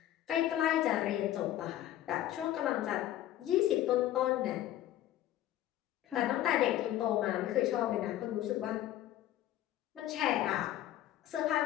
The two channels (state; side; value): quieter; right; 13.1 dB